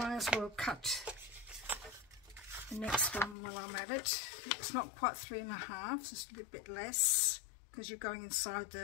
as well cut the next one while I'm at it. It's not quite 3.5, it's just a little bit less, because you're going inside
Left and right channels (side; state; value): right; drops out; at 3.4 s